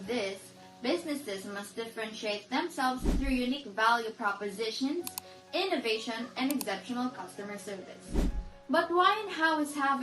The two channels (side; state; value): both; identical; correlation 1.00